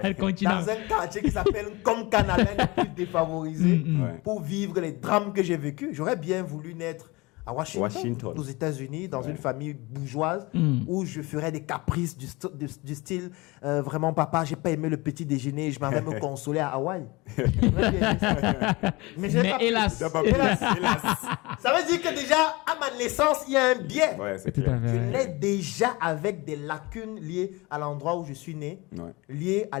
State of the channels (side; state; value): right; quieter; 23.6 dB